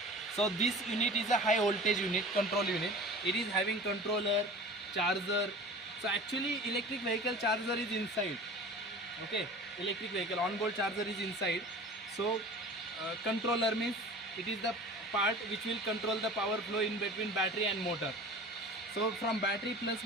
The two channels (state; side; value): normal; both; correlation 0.40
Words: So this unit is a high voltage unit, control unit. It is having controller, charger. So actually, electric vehicle charger is inside. Okay, electric vehicle on-board charger is inside. So controller means it is the part which will control the power flow in between battery and motor. So from battery plus